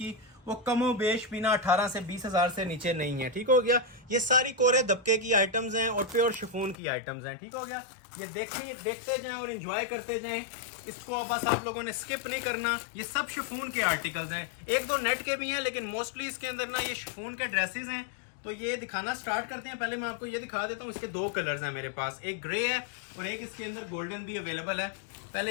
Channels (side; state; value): right; drops out; at 6.8 s